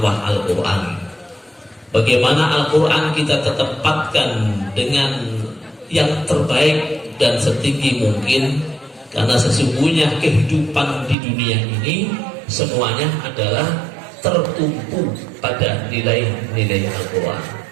Al-Quran. Bagaimana Al-Quran kita tetapkan dengan yang terbaik dan setinggi mungkin, karena sesungguhnya kehidupan di dunia ini semuanya adalah tertumpu pada nilai-nilai Al-Quran.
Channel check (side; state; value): left; drops out; at 11.2 s